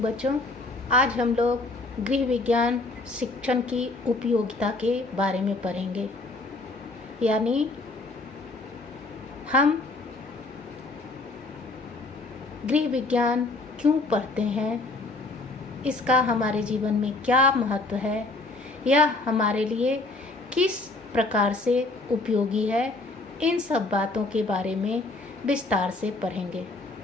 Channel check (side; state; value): right; quieter; 3.2 dB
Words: बच्चों। आज हम लोग गृह विज्ञान शिक्षण की उपयोगिता के बारे में पढ़ेंगे। यानी हम गृह विज्ञान क्यों पढ़ते हैं, इसका हमारे जीवन में क्या महत्व है, यह हमारे लिए किस प्रकार से उपयोगी है, इन सब बातों के बारे में विस्तार से पढ़ेंगे।